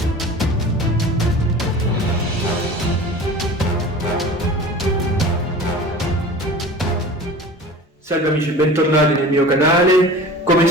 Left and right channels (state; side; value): normal; both; correlation 0.39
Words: Salve amici, bentornati nel mio canale. Come